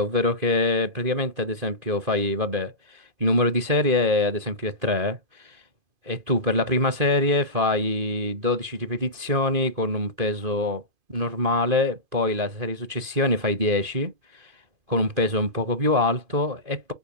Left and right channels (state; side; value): late; left; 2.5 ms